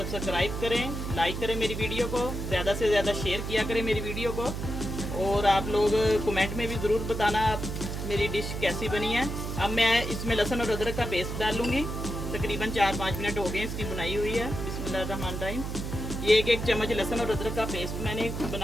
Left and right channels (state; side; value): noise; right; hum, 5 dB below the sound